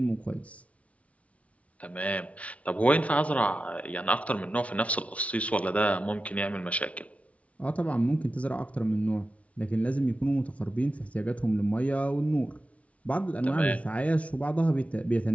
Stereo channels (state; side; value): late; right; 0.065 ms